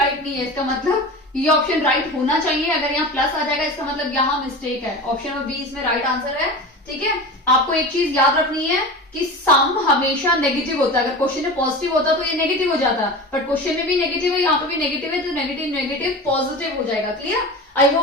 नहीं है, इसका मतलब ये ऑप्शन राइट होना चाहिए। अगर यहाँ प्लस आ जाएगा इसका मतलब यहाँ मिस्टेक है, ऑप्शन नंबर बी इसमें राइट आंसर है। ठीक है, आपको एक चीज याद रखनी है कि सम हमेशा नेगेटिव होता है। अगर क्वेश्चन में पॉजिटिव होता तो ये नेगेटिव हो जाता, बट क्वेश्चन में भी नेगेटिव है, यहाँ पे भी नेगेटिव है, तो नेगेटिव नेगेटिव पॉजिटिव हो जाएगा। क्लियर? आई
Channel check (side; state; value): both; normal; correlation 0.30